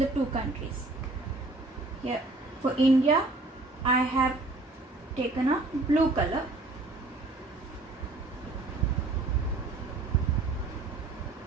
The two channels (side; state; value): left; quieter; 3.1 dB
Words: the two countries. Here for India I have taken a blue color.